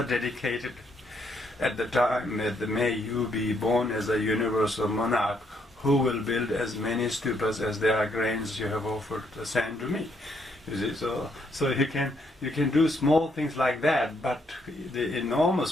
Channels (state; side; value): normal; both; correlation 0.73